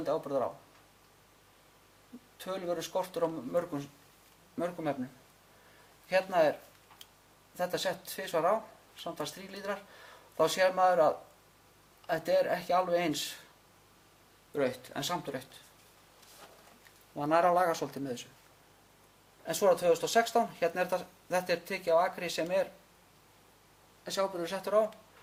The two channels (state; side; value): identical; both; correlation 1.00